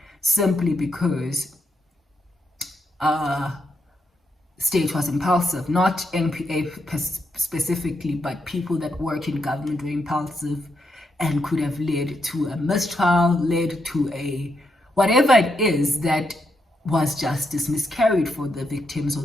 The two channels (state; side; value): normal; both; correlation 0.81